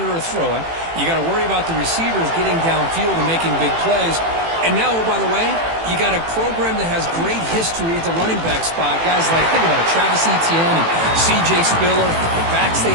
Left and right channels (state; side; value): late; left; 18 ms